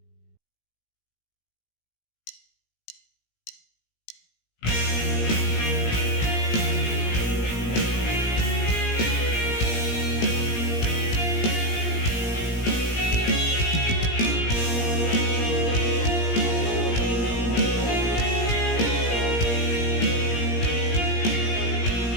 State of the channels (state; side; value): late; right; 17 ms